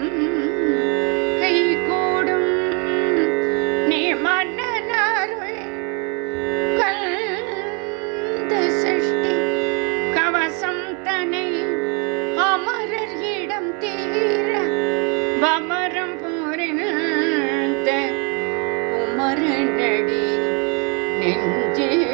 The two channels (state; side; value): quieter; left; 34.4 dB